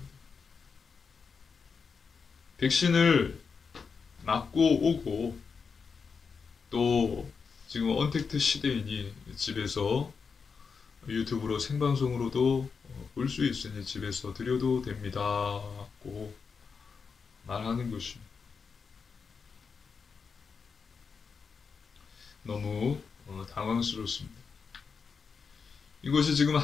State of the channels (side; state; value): right; quieter; 5.4 dB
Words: 백신을 맞고 오고 또 지금 언택트 시대이니 집에서 유튜브로 생방송으로도 볼 수 있으니 집에서 드려도 됩니다고 말하는 것입니다. 너무 당황스럽습니다. 이것이 지금